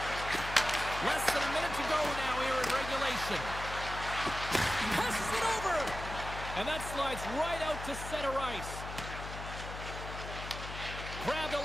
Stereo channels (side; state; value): left; noise; hum, 9 dB below the sound